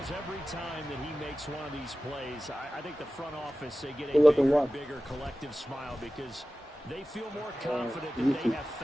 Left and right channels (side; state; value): both; normal; correlation 0.95